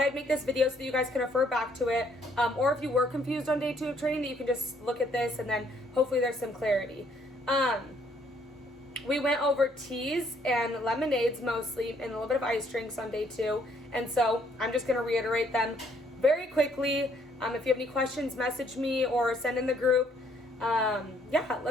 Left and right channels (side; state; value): both; normal; correlation 0.67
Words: make this video so that you guys can refer back to it. Or if you were confused on day 2 of training, that you can just look at this and then hopefully there's some clarity. We went over teas and lemonades mostly and a little bit of ice drinks on day 2. And so I'm just going to reiterate them very quickly. If you have any questions, message me or send in the group. Yeah,